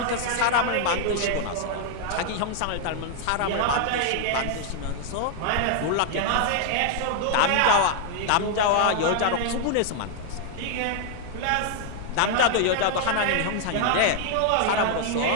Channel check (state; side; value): different; both; correlation 0.00